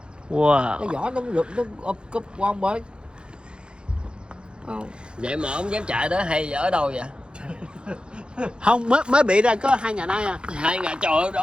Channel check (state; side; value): late; left; 0.052 ms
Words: Wow. Cái vỏ nó rụt nó úp cúp qua một bên. Vậy mà ông dám chạy đó hay ở đâu vậy? Không, mới bị ra có 2 ngày nay à. 2 ngày trời ơi,